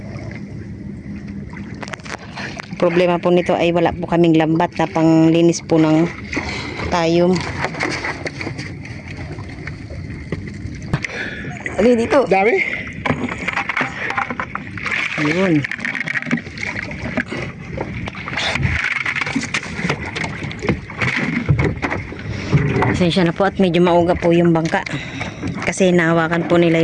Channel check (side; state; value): both; identical; correlation 1.00